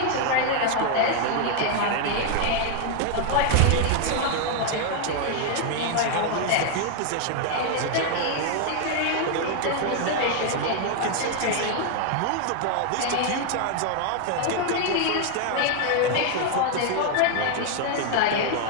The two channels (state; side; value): different; both; correlation 0.00